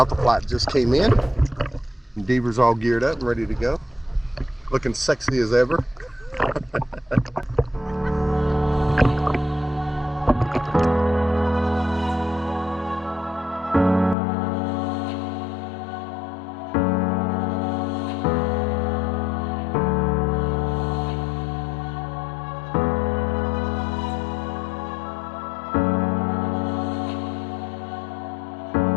flight just came in. And Deaver's all geared up and ready to go. Looking sexy as ever.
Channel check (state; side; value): drops out; right; at 14.2 s